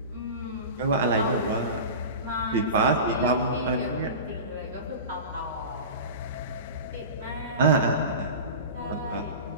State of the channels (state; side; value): inverted; both; correlation -0.31